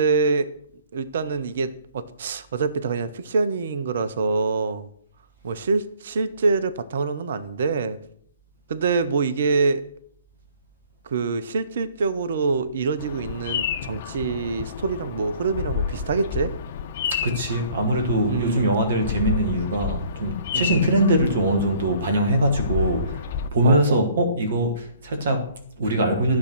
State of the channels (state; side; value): inverted; both; correlation -0.57